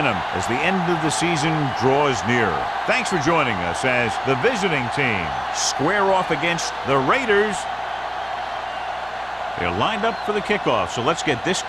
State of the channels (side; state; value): both; identical; correlation 1.00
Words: as the end of the season draws nearer. Thanks for joining us as the visiting team square off against the Raiders. They're lined up for the kickoff, so let's get this